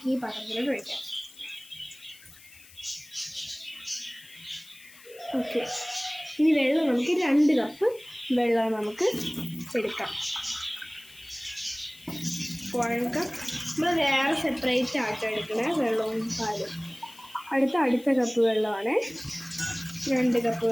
ഈ പാത്രത്തിലോട്ട് ഒഴിക്കാം. ഓക്കെ, ഇനി വെള്ളം നമുക്ക് 2 കപ്പ് വെള്ളം നമുക്ക് എടുക്കാം. 1 കപ്പ് നമ്മൾ വേറെ സെപ്പറേറ്റ് ആയിട്ട് എടുക്കണേ വെള്ളവും പാലും. അടുത്ത കപ്പ് വെള്ളമാണ്. 2 കപ്പ്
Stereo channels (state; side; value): noise; left; hiss, 22 dB below the sound